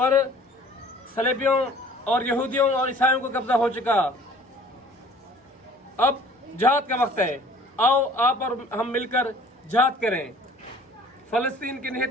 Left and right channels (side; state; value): both; normal; correlation 0.51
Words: सलेबियों और यहूदियों और ईसाइयों को कब्जा हो चुका। अब जिहाद का वक्त है। आओ आप और हम मिलकर जिहाद करें। फलस्तीन के